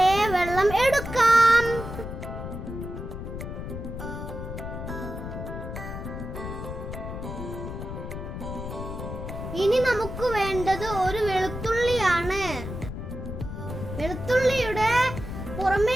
വെള്ളം എടുക്കാം. ഇനി നമുക്ക് വേണ്ടത് ഒരു വെളുത്തുള്ളിയാണ്. വെളുത്തുള്ളിയുടെ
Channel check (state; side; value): noise; left; rumble, 7 dB below the sound